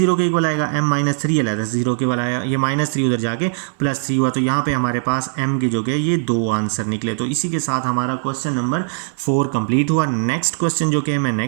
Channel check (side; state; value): left; silent; 66 dB below the other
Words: के इक्वल आएगा, m - 3 अलहदा से 0 के इक्वल आया, ये -3 उधर जाके +3 हुआ। तो यहाँ पे हमारे पास m के जो कि ये 2 आंसर निकले। तो इसी के साथ हमारा क्वेश्चन नंबर 4 कंप्लीट हुआ। नेक्स्ट क्वेश्चन जो कि मैं